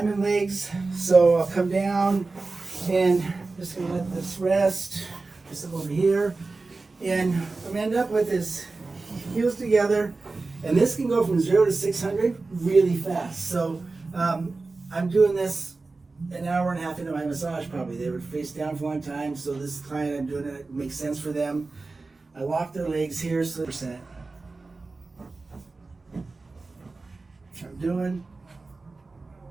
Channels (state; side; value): quieter; left; 3.7 dB